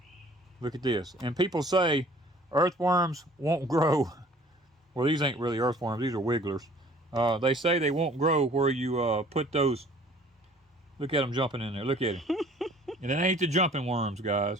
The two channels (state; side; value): normal; both; correlation 0.52